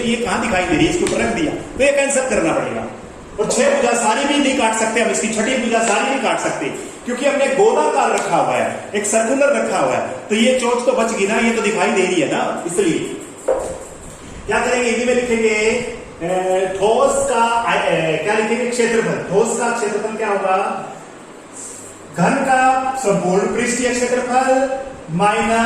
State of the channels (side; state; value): both; identical; correlation 1.00